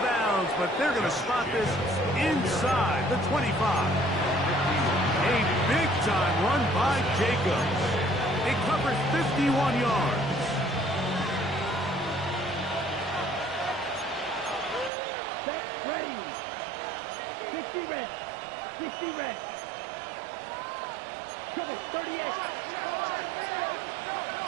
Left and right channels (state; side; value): drops out; left; at 14.9 s